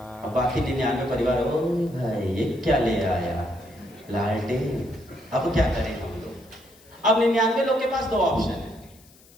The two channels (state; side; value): noise; left; hiss, 27 dB below the sound